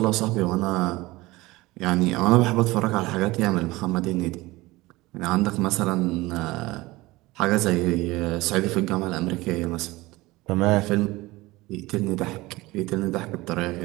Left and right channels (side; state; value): left; quieter; 20.3 dB